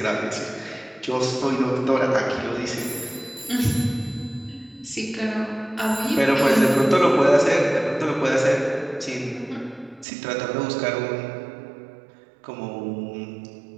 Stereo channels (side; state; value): left; drops out; at 10.1 s